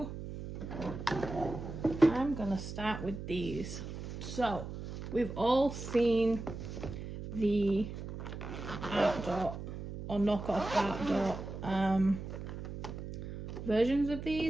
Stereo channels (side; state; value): right; noise; hum, 8 dB below the sound